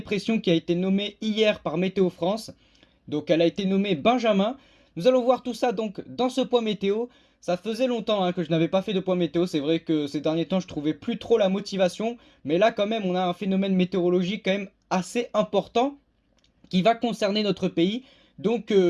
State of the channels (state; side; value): identical; both; correlation 1.00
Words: qui a été nommée hier par Météo France. Donc elle a été nommée Benjamin. Nous allons voir tout ça donc dans ce point météo. Ça faisait longtemps que je n'avais pas fait de point météo. C'est vrai que ces derniers temps je trouvais plus trop la motivation. Mais là quand même on a un phénomène météorologique quand même assez important qui va concerner notre pays. Donc